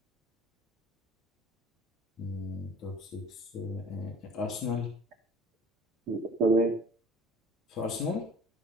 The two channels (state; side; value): normal; both; correlation 0.47